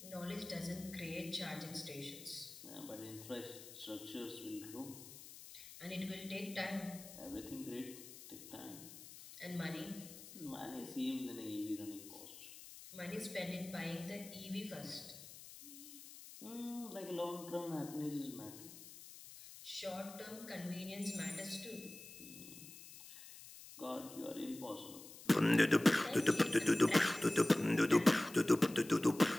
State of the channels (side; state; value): left; noise; hiss, 15 dB below the sound